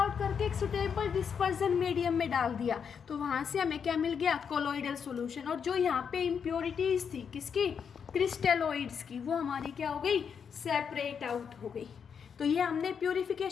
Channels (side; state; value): right; quieter; 6.9 dB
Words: करके एक सुटेबल डिस्पर्जन मीडियम में डाल दिया, तो वहाँ से हमें क्या मिल गया, कोलॉइडल सोल्यूशन। और जो यहाँ पे इम्प्योरिटीज़ थी किसकी, क्रिस्टलोइड्स की, वो हमारी क्या हो गई, सेपरेट आउट हो गई। तो ये हमने